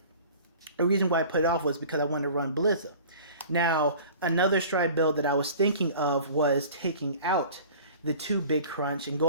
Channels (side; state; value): both; inverted; correlation -0.43